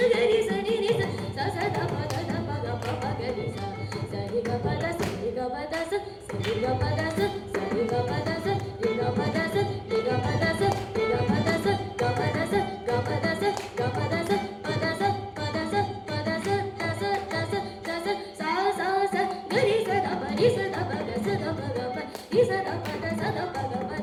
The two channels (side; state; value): both; identical; correlation 1.00